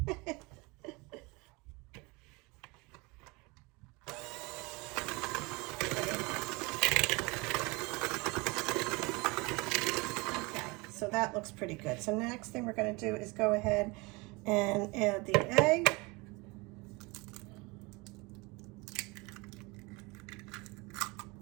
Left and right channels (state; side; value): quieter; left; 25.9 dB